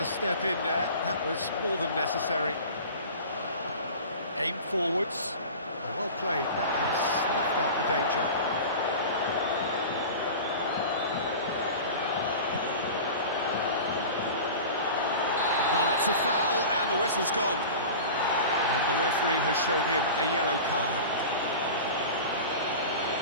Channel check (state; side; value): inverted; both; correlation -0.35